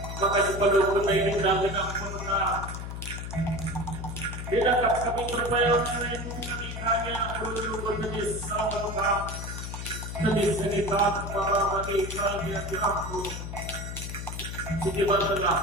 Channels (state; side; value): noise; left; hum, 7 dB below the sound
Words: maka sebelum kita ini genang purna tidak kami berupaya untuk itu kami hanya perlu berjenis salam jenis sekitar bahwa bagi kalian aku sekitar tengah